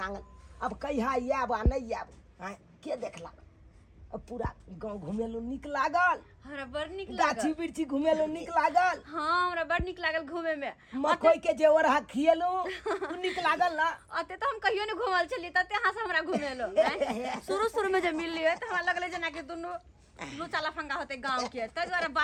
आंगन अब कहिया आब आ नहीं आब हैं के देखला अब पूरा गांव घुमेलो निक लागल हमरा बड़ नीक गाछी लागल बिरछी घुमेलो निक लागल हां हमरा बड़ नीक लागल घूमे में मकई के जेवर हा खिएलो निक लागल ना अते तो हम कहियो ने घुमल छलिए तते अहाँ से हमरा घुमेलो शुरू में जब मिललिए त हमरा लगले जना कि दुनु लुचा लफंगा होते गांव के त द्वारा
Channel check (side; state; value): both; identical; correlation 1.00